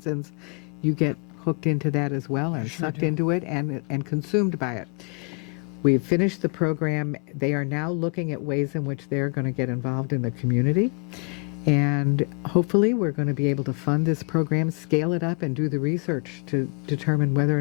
you get hooked into that as well and sucked into it and consumed by it. We've finished the program. They are now looking at ways in which they're going to get involved in the community. And hopefully we're going to be able to fund this program, scale it up, and do the research to determine whether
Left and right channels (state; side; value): quieter; right; 39.3 dB